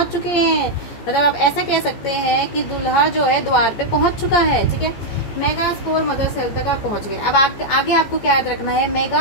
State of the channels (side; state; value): right; late; 14 ms